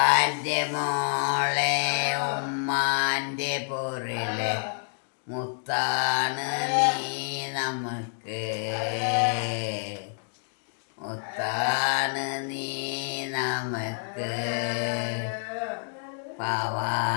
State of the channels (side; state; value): right; silent; digital silence